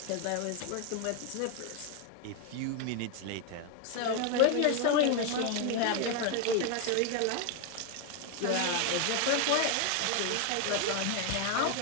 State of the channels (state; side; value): different; both; correlation 0.01